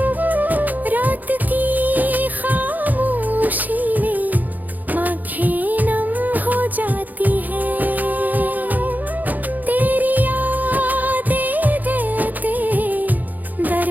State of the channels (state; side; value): late; left; 0.083 ms